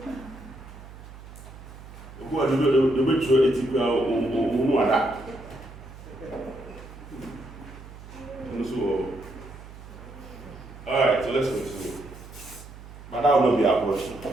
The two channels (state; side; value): noise; right; hum, 16 dB below the sound